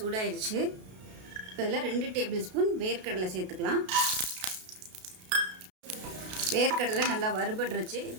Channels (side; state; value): left; late; 32 ms